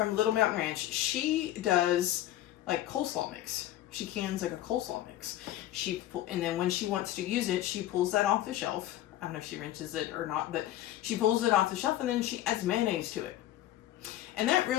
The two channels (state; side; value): quieter; right; 13.8 dB